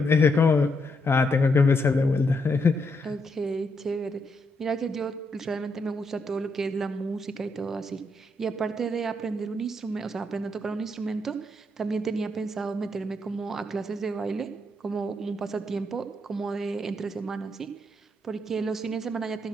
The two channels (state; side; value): normal; both; correlation 0.78